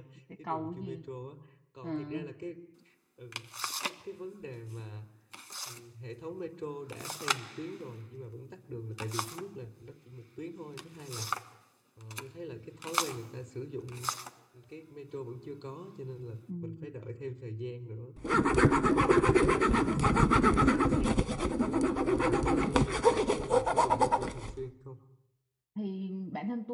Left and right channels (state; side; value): identical; both; correlation 1.00